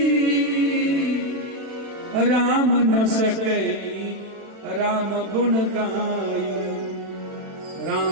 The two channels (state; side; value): late; left; 36 ms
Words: राम न सके राम गुण गाई।